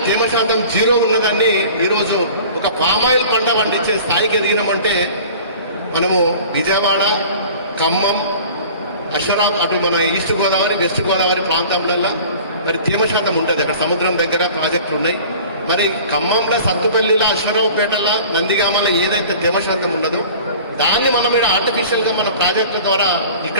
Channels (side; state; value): both; inverted; correlation -0.43